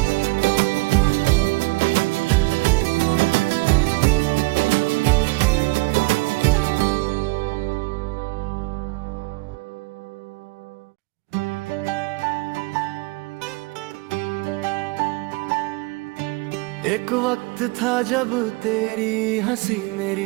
एक वक्त था जब तेरी हंसी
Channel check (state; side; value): quieter; left; 25.5 dB